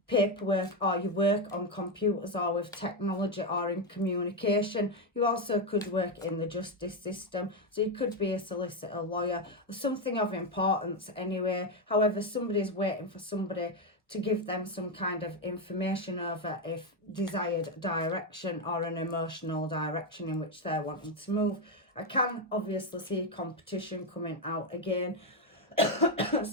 paperwork, or you work on computers or with technology or in communication. You also could work in the justice system, so you could be a solicitor, lawyer, or something of importance anyway. However, somebody's waiting for somebody to give them some kind of information over a desired direction or an emotional direction in which they're wanting to move. I can obviously see competition coming out again,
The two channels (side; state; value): both; normal; correlation 0.07